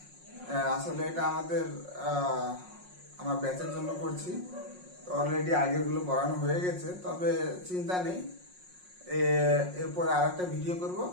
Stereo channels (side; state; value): left; late; 5.5 ms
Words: আসলে এটা আমার ব্যাচের জন্য করছি, তো অলরেডি আগেরগুলো পড়ানো হয়ে গেছে, তবে চিন্তা নেই, এরপরে আর একটা ভিডিও করব